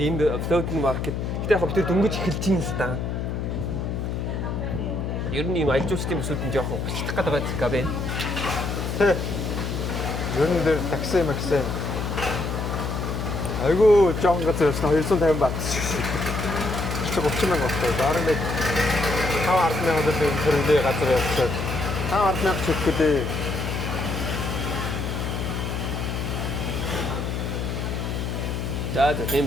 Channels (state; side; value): noise; left; hum, 3 dB below the sound